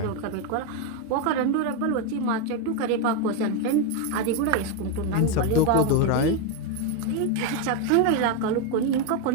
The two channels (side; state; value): both; different; correlation 0.02